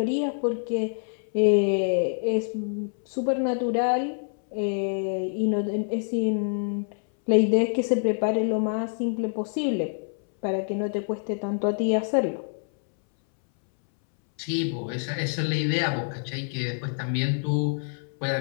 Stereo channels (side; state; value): right; silent; 61 dB below the other